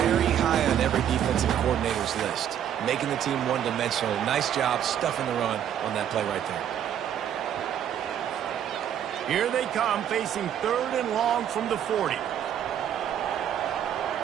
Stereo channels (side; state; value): left; quieter; 9.8 dB